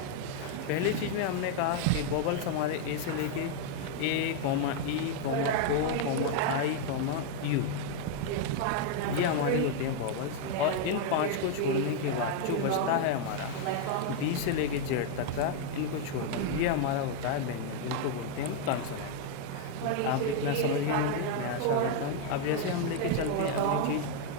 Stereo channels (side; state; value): both; different; correlation 0.00